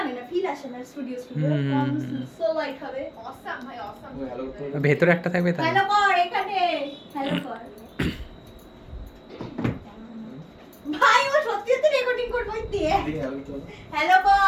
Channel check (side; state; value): both; identical; correlation 1.00